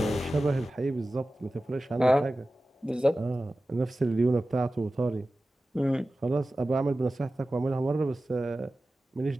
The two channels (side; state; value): both; normal; correlation 0.95